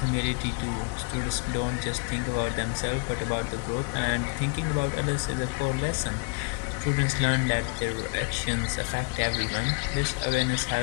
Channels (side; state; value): right; quieter; 35.3 dB